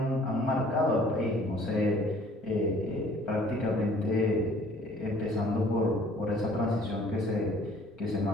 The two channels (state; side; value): normal; both; correlation 0.55